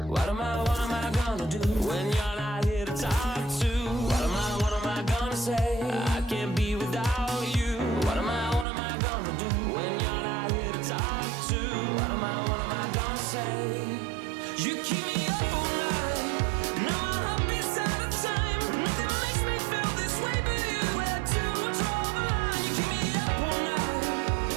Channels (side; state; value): left; drops out; at 8.7 s